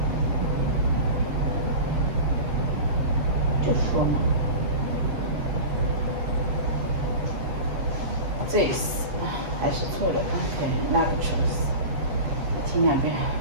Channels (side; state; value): left; late; 8.5 ms